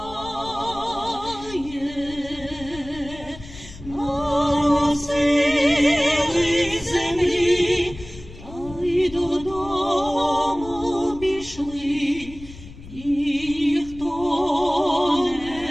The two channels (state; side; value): noise; left; rumble, 16 dB below the sound